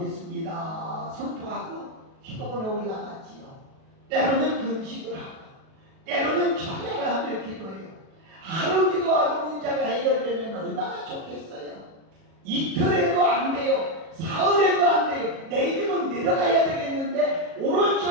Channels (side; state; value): left; late; 37 ms